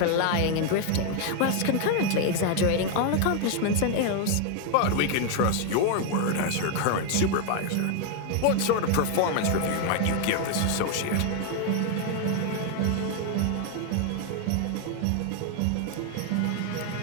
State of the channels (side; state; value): both; different; correlation 0.00